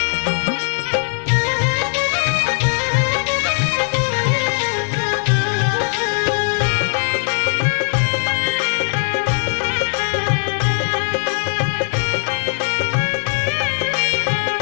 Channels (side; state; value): right; silent; digital silence